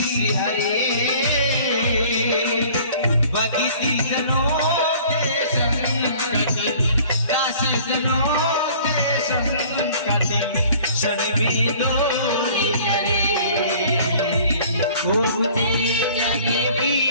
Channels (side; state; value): both; inverted; correlation -0.51